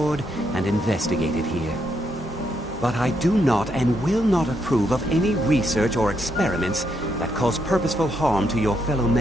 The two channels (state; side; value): normal; both; correlation 0.78